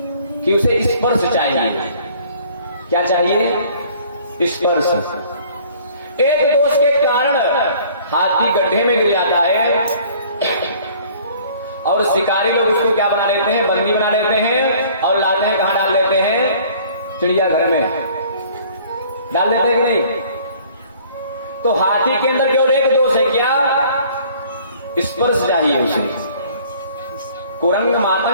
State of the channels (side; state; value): both; inverted; correlation -0.53